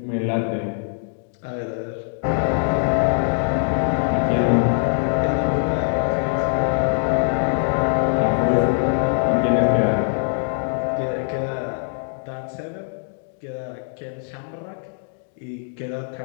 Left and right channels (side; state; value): right; silent; digital silence